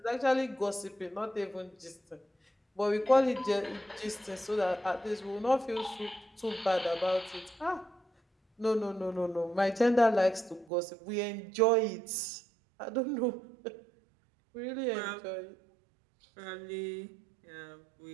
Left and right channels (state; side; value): drops out; left; at 10.7 s